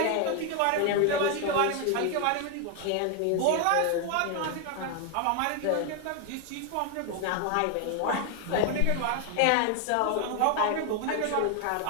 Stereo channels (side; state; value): both; different; correlation 0.00